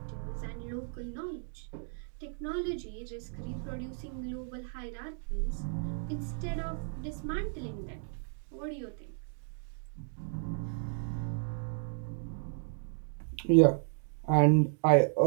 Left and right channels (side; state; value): left; silent; digital silence